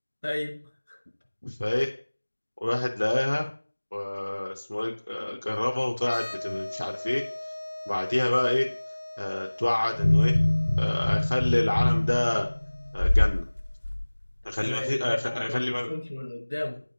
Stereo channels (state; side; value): inverted; both; correlation -1.00